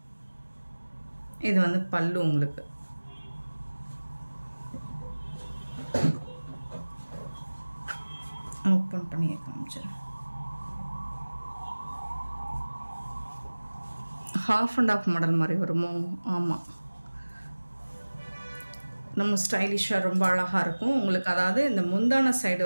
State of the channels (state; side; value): inverted; both; correlation -1.00